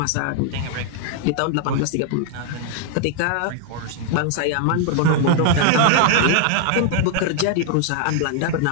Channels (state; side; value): different; both; correlation 0.00